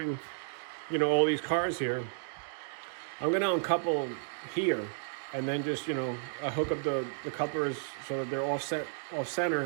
you know, all these cars here. I'm going to uncouple here and then just, you know, hook up the couplers so that they're off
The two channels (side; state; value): left; silent; digital silence